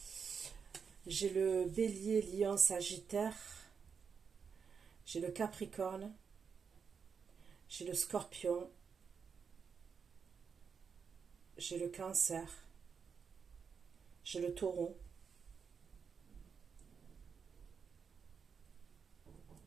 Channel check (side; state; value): left; quieter; 6.1 dB